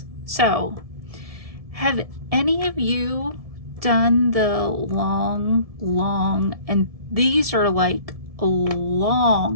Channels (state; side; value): late; left; 1.7 ms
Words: So, have any of you done the long, and these are like